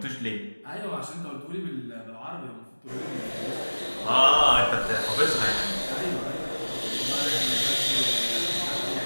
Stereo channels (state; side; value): inverted; both; correlation -1.00